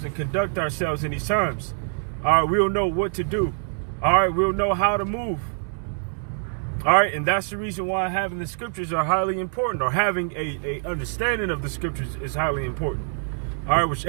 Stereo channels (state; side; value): silent; left; 61 dB below the other